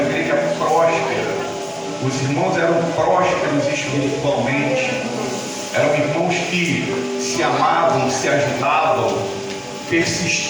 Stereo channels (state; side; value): identical; both; correlation 1.00